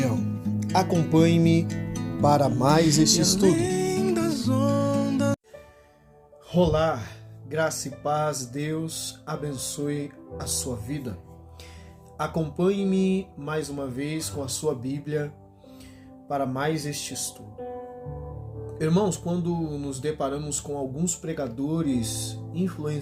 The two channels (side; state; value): both; identical; correlation 1.00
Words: Acompanhe-me para mais este estudo. Olá, graça e paz, Deus abençoe a sua vida. Acompanhe-me mais uma vez com a sua Bíblia para mais este estudo. Irmãos, quando nos deparamos com alguns pregadores,